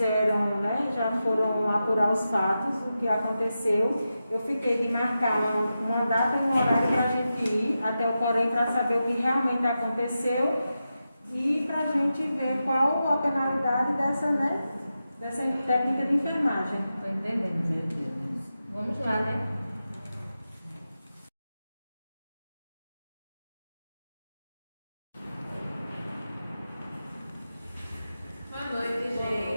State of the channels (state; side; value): inverted; both; correlation -0.91